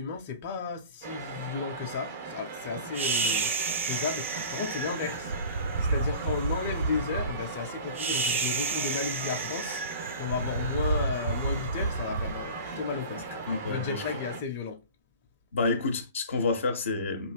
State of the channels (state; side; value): inverted; both; correlation -0.40